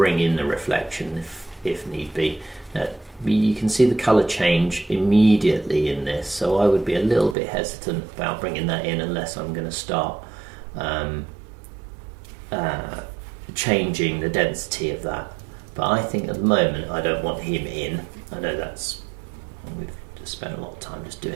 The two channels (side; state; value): left; drops out; at 7.4 s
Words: in the reflection if need be. Now, you can see the colour change immediately in this, so I would be a little bit hesitant about bringing that in unless I'm going to start changing the density of that. But I think at the moment I don't want him in. I know we've just spent a lot of time just